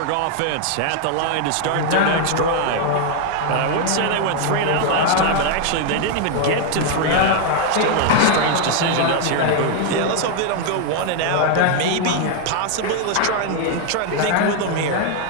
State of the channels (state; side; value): different; both; correlation 0.00